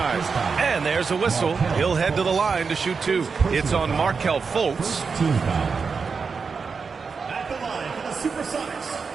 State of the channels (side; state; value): left; quieter; 5.2 dB